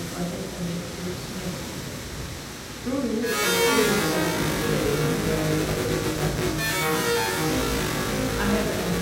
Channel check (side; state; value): both; identical; correlation 1.00